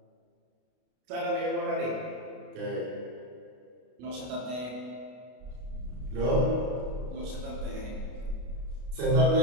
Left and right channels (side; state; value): left; late; 32 ms